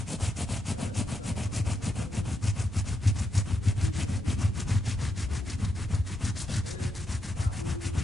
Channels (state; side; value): normal; both; correlation 0.83